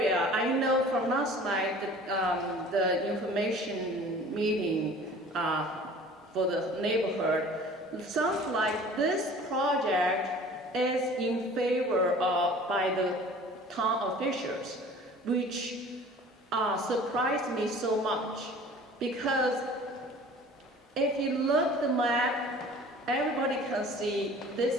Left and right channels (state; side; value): normal; both; correlation 0.46